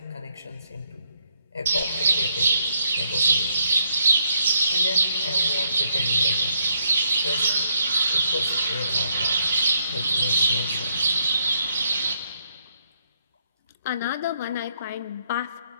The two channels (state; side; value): inverted; both; correlation -0.75